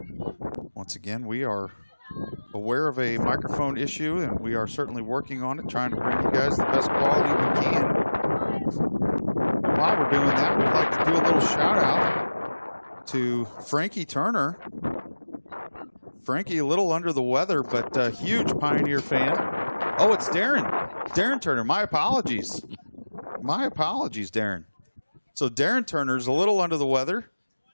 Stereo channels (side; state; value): both; inverted; correlation -1.00